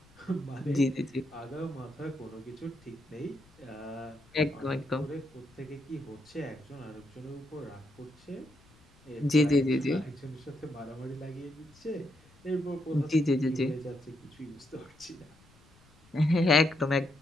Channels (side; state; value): left; noise; rumble, 28 dB below the sound